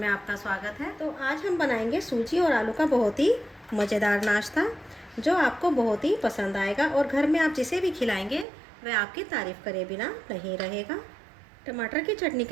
आपका स्वागत है। तो आज हम बनाएंगे सूजी और आलू का बहुत ही मज़ेदार नाश्ता जो आपको बहुत ही पसंद आएगा और घर में आप जिसे भी खिलाएंगे वह आपकी तारीफ़ करे बिना नहीं रहेगा। टमाटर की चटनी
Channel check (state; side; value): drops out; left; at 8.5 s